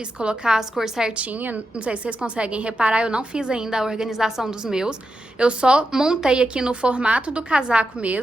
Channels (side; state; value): both; normal; correlation 0.88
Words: colocar as cores certinhas. Não sei se vocês conseguem reparar, eu não fiz ainda a organização dos meus. Eu só montei aqui no formato do casaco